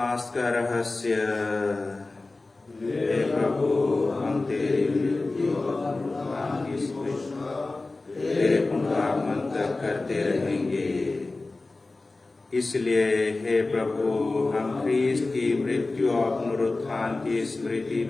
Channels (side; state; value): right; quieter; 3.3 dB